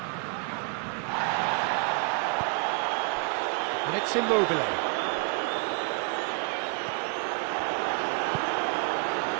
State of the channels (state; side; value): quieter; left; 35.3 dB